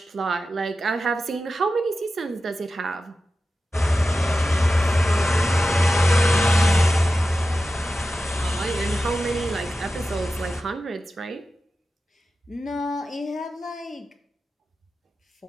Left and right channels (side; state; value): both; normal; correlation 0.93